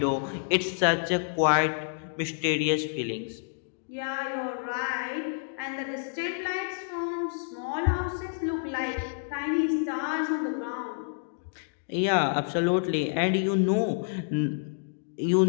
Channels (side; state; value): right; silent; digital silence